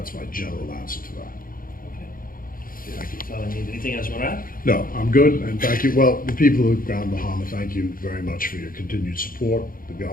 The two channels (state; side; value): late; right; 0.41 ms